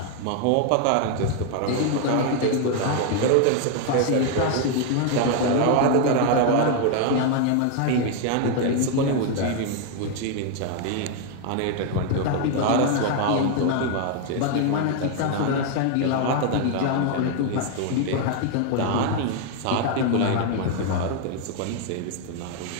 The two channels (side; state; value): both; different; correlation 0.01